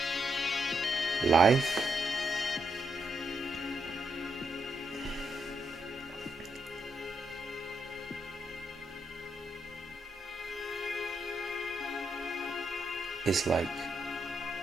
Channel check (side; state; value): both; normal; correlation 0.80